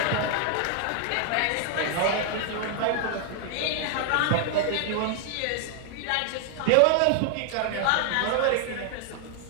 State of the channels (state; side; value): different; both; correlation 0.00